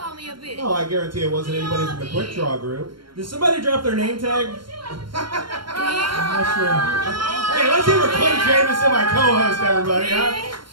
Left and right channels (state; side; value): late; left; 0.72 ms